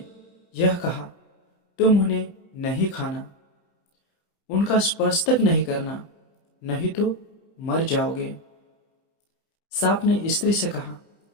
यह कहा, तुम उन्हें नहीं खाना, उनका स्पर्श तक नहीं करना, नहीं तो मर जाओगे। सांप ने स्त्री से कहा,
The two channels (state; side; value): late; right; 30 ms